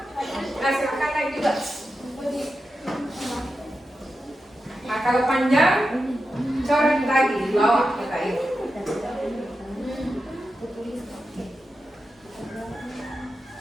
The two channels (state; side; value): normal; both; correlation 0.90